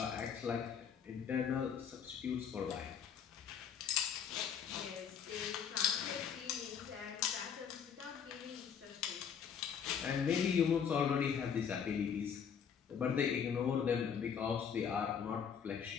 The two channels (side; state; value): right; quieter; 7.6 dB